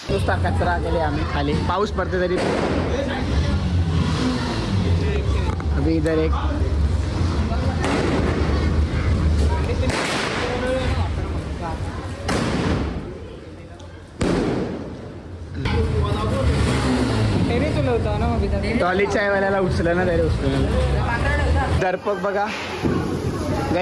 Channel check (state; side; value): identical; both; correlation 1.00